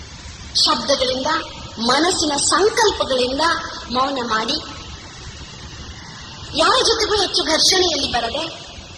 ಶಬ್ದಗಳಿಂದ, ಮನಸ್ಸಿನ ಸಂಕಲ್ಪಗಳಿಂದ ಮೌನ ಮಾಡಿ, ಯಾರ ಜೊತೆಗೂ ಹೆಚ್ಚು ಘರ್ಷಣೆಯಲ್ಲಿ ಬರದೆ,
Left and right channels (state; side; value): identical; both; correlation 1.00